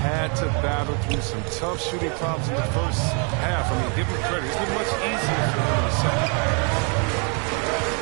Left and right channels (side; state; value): left; quieter; 36.5 dB